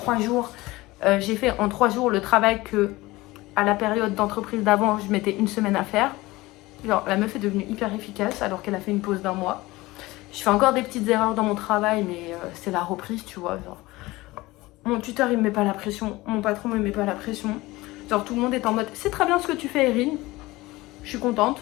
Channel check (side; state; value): right; quieter; 20.0 dB